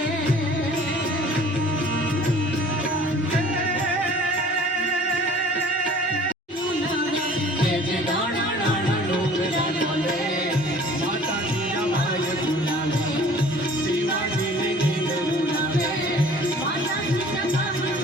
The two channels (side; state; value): both; normal; correlation 0.50